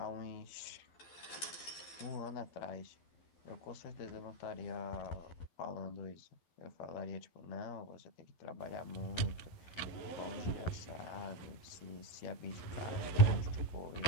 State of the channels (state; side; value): late; right; 12 ms